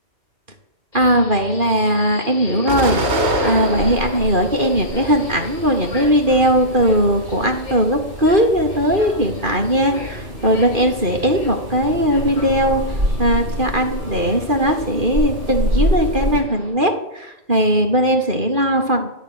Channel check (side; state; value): left; late; 2.4 ms